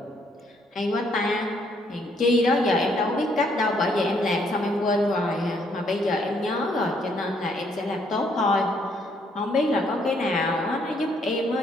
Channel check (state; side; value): normal; both; correlation 0.69